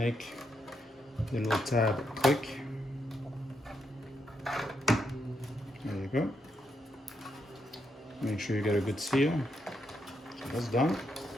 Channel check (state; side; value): normal; both; correlation 0.80